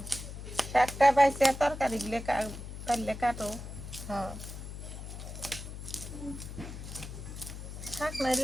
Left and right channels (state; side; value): noise; left; hum, 10 dB below the sound